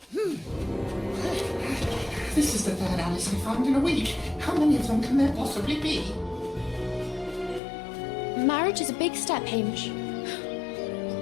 This is the third Alice I found in a week. How many of them can there possibly be? Marriage is a big step, Hamish.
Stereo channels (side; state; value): right; drops out; at 7.6 s